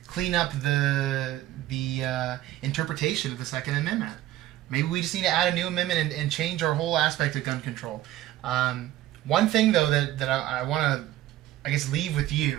up the interpretation of the Second Amendment. Maybe we just need to add a new amendment and change our whole aspect of gun control. One thing, though, that I want to, I guess, leave with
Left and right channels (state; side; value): quieter; left; 14.2 dB